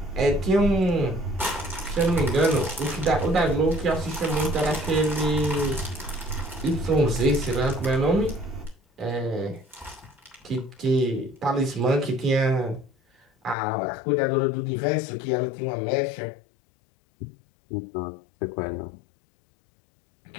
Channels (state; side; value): drops out; right; at 13.6 s